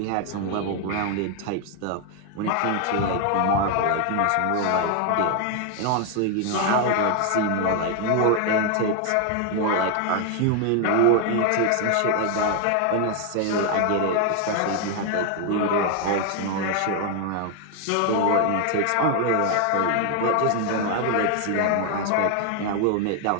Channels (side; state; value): both; different; correlation 0.01